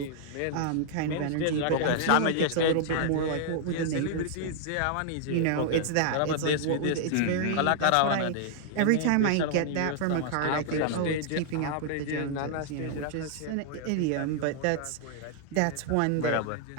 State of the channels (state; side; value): different; both; correlation -0.01